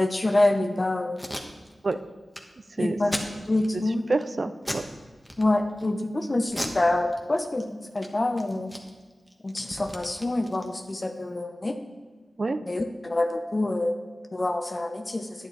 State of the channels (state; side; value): normal; both; correlation 0.97